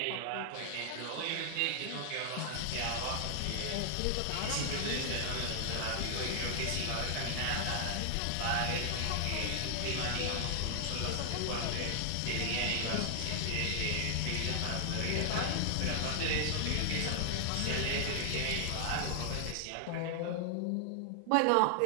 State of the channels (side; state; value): both; different; correlation 0.00